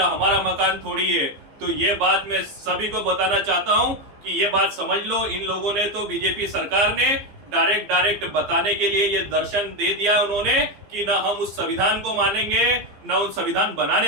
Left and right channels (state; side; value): late; left; 15 ms